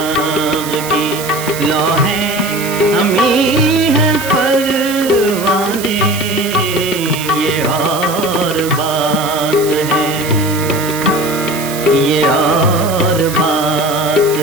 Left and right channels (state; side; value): noise; right; hiss, 10 dB below the sound